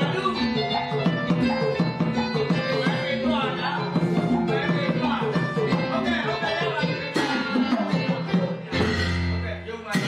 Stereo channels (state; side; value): identical; both; correlation 1.00